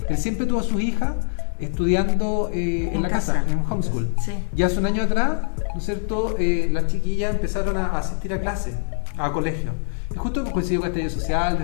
Él siempre tuvo a sus hijas estudiando en la casa, en un homeschool. Sí. Y hace un año atrás, ¿no es cierto?, las chiquillas empezaron a asistir a clases, a colegios. Y justo coincidió con el estallido social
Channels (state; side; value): silent; right; digital silence